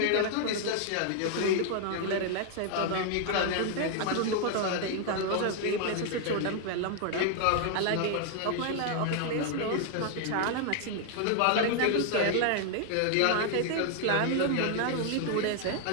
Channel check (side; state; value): both; different; correlation 0.00